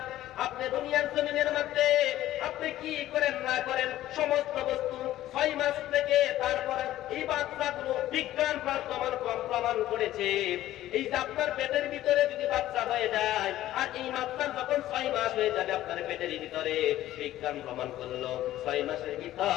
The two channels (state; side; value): quieter; right; 14.1 dB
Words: আপনি দুনিয়ার জমিনের মধ্যে আপনি কি করেন না করেন, সমস্ত বস্তু 6 মাস থেকে তারপরে এই বাচ্চাগুলো বিজ্ঞান প্রমাণ করেছে, এই যে আপনার পেটের ভিতরে যদি বাচ্চা হয়ে যায় আর এই বাচ্চার যখন 6 মাস হয়ে যাবে আপনার পেটের ভিতরে, বিজ্ঞান প্রমাণ করলো 6 মাসের